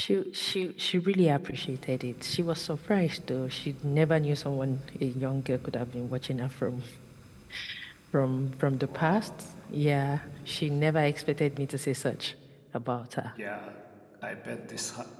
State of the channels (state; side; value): identical; both; correlation 1.00